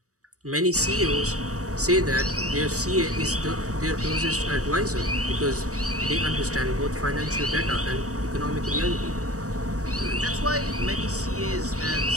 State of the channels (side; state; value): left; late; 0.66 ms